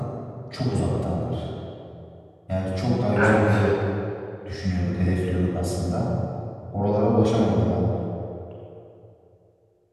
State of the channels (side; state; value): both; identical; correlation 1.00